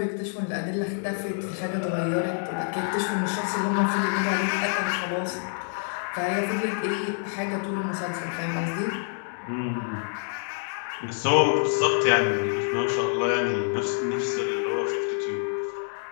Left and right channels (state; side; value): silent; right; 59 dB below the other